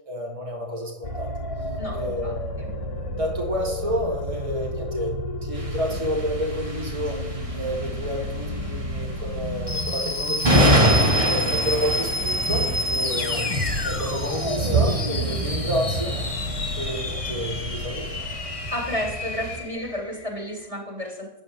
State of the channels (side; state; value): left; late; 1.6 ms